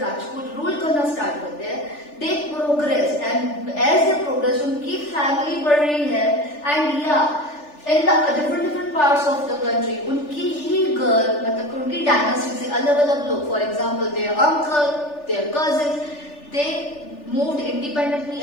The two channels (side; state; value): right; late; 3.4 ms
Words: rule करना start करते हैं, they progress, and as they progress उनकी family बढ़ रही है, and in the different parts of the country उनकी ही girl, मतलब उनकी dynasty से अलग लोग, for example their uncle, their cousins, they moved independently